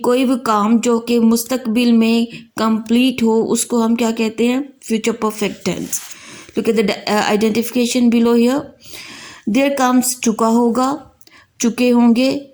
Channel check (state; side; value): identical; both; correlation 1.00